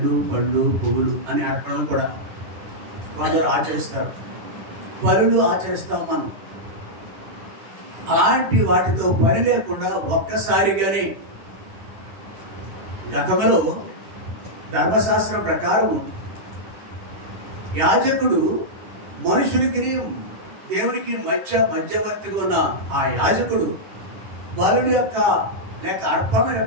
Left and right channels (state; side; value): late; left; 10 ms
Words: పళ్ళు పువ్వులు అని అర్పణ కూడా కొందరు ఆచరిస్తారు. బలులు ఆచరిస్తాం మనం. అలాంటి వాటితో పని లేకుండా ఒక్కసారిగానే గతంలో ధర్మశాస్త్రం ప్రకారం యాజకుడు మనుషులకి దేవునికి మధ్యవర్తిగా ఉన్న ఆ యాజకుడు బలుడి యొక్క లేక అర్పణ